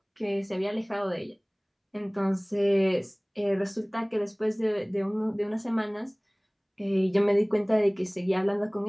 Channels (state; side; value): identical; both; correlation 1.00